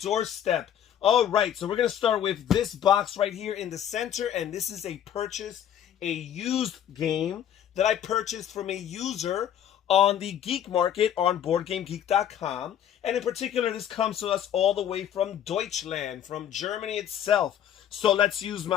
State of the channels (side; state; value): right; quieter; 10.1 dB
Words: Alright, so we're going to start with this box right here in the center, and this is a used game that I purchased from a user on the Geek Market on BoardGameGeek.com. And in particular, this comes to us all the way from Deutschland, from Germany itself. So let's use